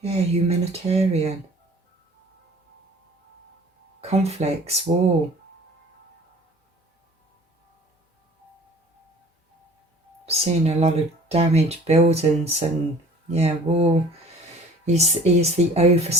Yeah, humanitarian. Conflicts, war. Seen a lot of damaged buildings and war. He's the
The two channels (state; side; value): normal; both; correlation 0.48